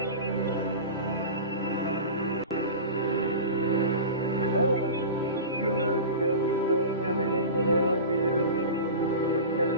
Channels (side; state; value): both; inverted; correlation -0.31